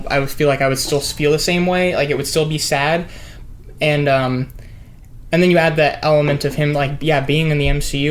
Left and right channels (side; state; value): both; identical; correlation 1.00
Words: I would feel like I would still feel the same way. Like, it would still be sad. And then you add that element of him, like, yeah, being in the